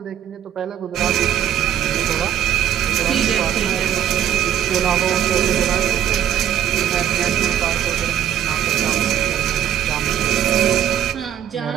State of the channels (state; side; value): quieter; left; 10.3 dB